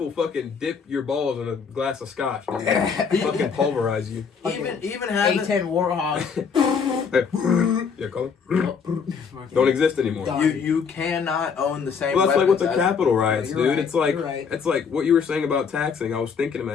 fucking dip your balls in a glass of scotch, dude. Fucking pulverize you. Even having... A10 Warhawk. Yeah, call it. Don't exist anymore. Done. You cannot own the same Well, that's like with weapons the as- Capitol riots, You're dude. right, It's like you're right. it's like what you were saying about taxing. I was thinking in my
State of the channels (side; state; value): right; quieter; 6.1 dB